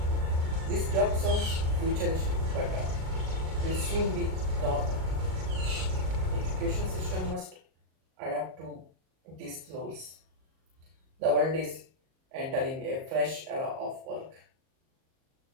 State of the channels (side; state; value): left; late; 38 ms